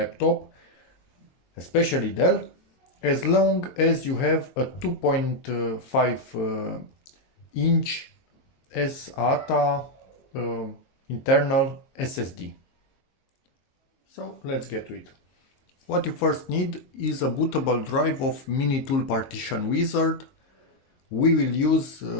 especially Dell, as long as you have a 2.5 inch SATA internal SSD. So let's get to it. What you first need is a bootable drive of mini-tool partition wizard. We will use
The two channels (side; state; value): right; late; 22 ms